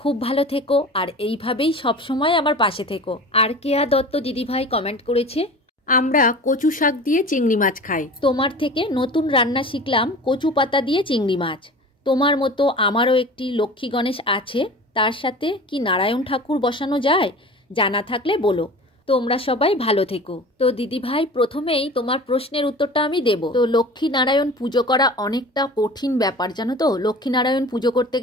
ভালো থেকো আর এইভাবেই সবসময় আমার পাশে থেকো। আর কেয়া দত্ত দিদিভাই কমেন্ট করেছে, আমরা কচু শাক দিয়ে চিংড়ি মাছ খাই। তোমার থেকে নতুন রান্না শিখলাম, কচু পাতা দিয়ে চিংড়ি মাছ। তোমার মতো আমারও একটি লক্ষ্মী গণেশ আছে, তার সাথে কি নারায়ণ ঠাকুর বসানো যায়? জানা থাকলে বলো। তোমরা সবাই ভালো থেকো। তো দিদিভাই, প্রথমেই তোমার প্রশ্নের উত্তরটা আমি দেব। তো লক্ষ্মী নারায়ণ পুজো করা অনেকটা কঠিন ব্যাপার, জানো তো। লক্ষ্মী নারায়ণ পুজো করতে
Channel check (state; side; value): normal; both; correlation 0.38